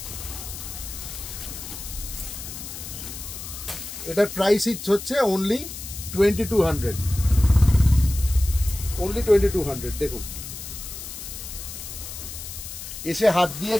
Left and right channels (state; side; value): noise; left; hiss, 10 dB below the sound